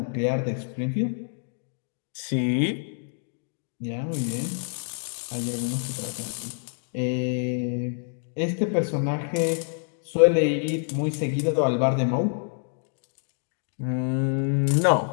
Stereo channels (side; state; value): right; silent; 60 dB below the other